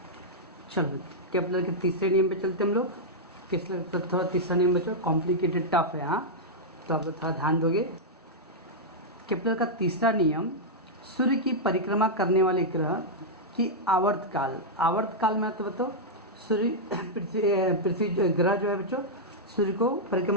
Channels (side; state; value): both; normal; correlation -0.07